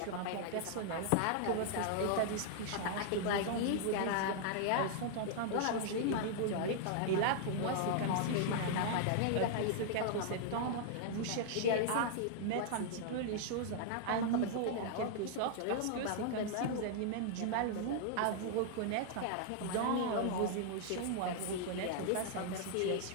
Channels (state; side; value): different; both; correlation -0.01